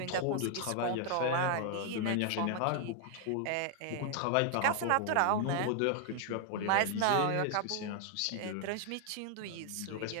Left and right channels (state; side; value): different; both; correlation 0.00